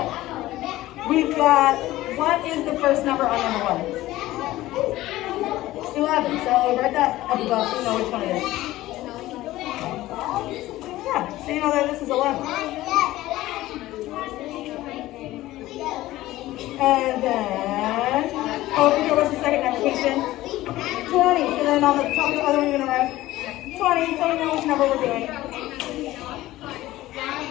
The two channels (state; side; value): quieter; right; 16.4 dB